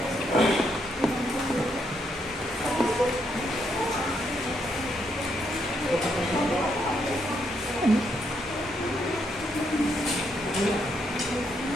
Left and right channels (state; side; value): normal; both; correlation 0.76